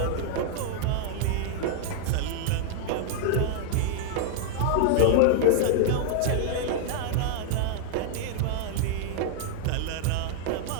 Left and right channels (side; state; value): both; different; correlation -0.01